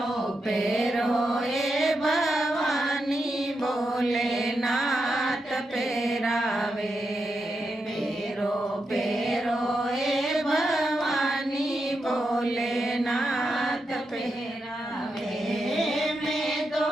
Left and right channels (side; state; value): both; normal; correlation 0.86